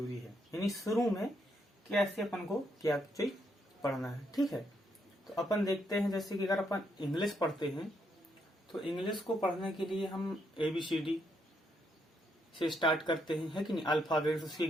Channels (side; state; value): both; normal; correlation 0.76